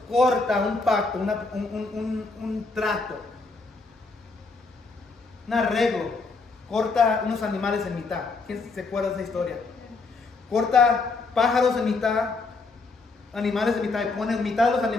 corta un pacto, un trato, un arreglo. Corta unos animales en mitad. ¿Quién se acuerda de esa historia? Corta pájaros en mitad, animales en mitad, y pone mitad de los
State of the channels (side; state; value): right; quieter; 3.9 dB